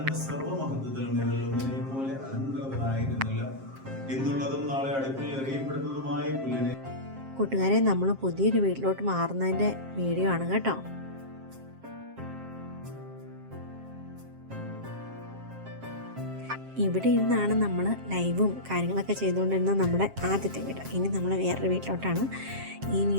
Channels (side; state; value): left; late; 7.5 ms